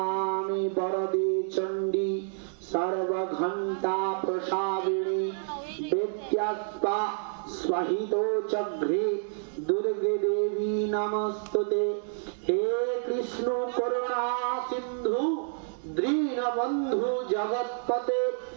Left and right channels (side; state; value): left; silent; digital silence